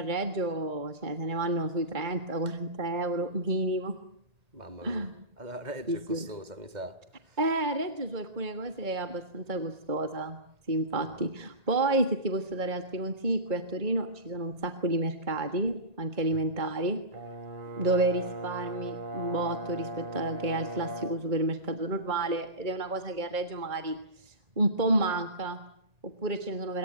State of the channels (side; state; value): left; late; 1.8 ms